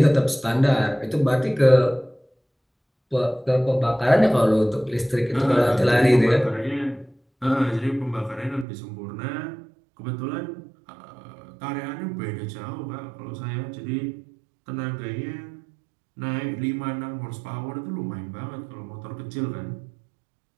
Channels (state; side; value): drops out; left; at 8.7 s